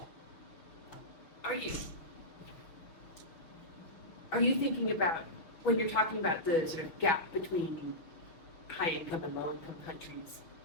that. Are you thinking about, when you're talking about the sort of gap between high income and low income countries,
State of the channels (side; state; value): right; late; 6.1 ms